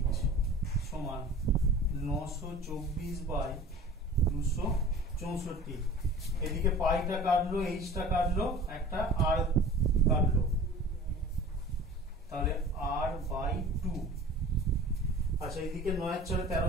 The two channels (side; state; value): both; normal; correlation 0.41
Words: সমান 924 বাই 264। এদিকে পাইটা কাটলো, এইচটা কাটলো, একটা আর কাটলো, তাহলে আর বাই 2। আচ্ছা, এদিকে 9 এর 4